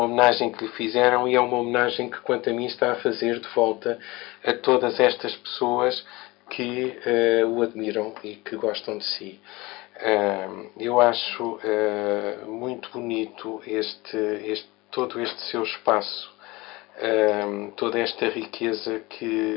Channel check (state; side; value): quieter; right; 22.3 dB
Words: homenagem que lhe fizeram e é uma homenagem que, quanto a mim, está a fazer de volta a todas estas pessoas que o admiram e que gostam de si. Eu acho muito bonito todo este seu espaço, toda esta riqueza